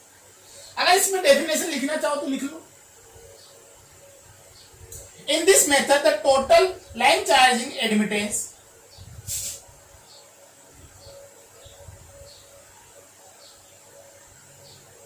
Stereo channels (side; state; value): both; identical; correlation 1.00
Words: अगर इसमें डेफिनेशन लिखना चाहो तो लिख लो। In this method the total line charging admittance